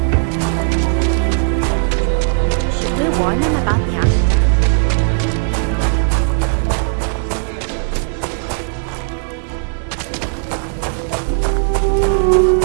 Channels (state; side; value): silent; left; 63 dB below the other